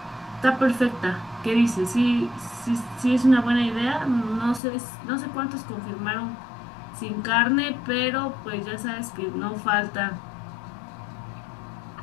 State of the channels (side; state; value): right; drops out; at 4.6 s